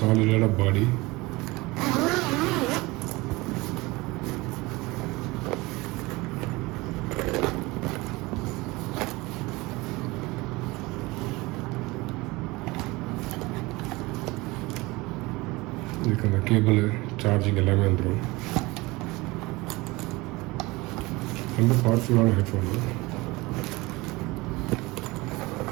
பாடி. இதுக்கு அந்த கேபிள் சார்ஜிங் எல்லாமே வந்துடும். ரொம்ப பவர்ஃபுல்லான ஹெட்ஃபோன்.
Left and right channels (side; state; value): left; quieter; 22.3 dB